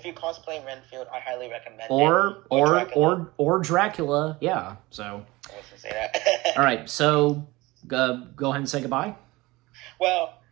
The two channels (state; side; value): quieter; left; 21.2 dB